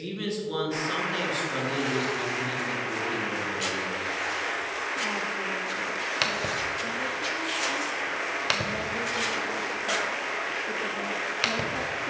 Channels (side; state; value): both; identical; correlation 1.00